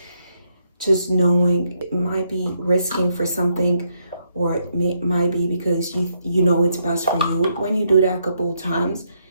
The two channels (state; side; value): inverted; both; correlation -0.77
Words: just knowing it might be risking for something, or it might be because you know it's best for you. When you do that a couple of times,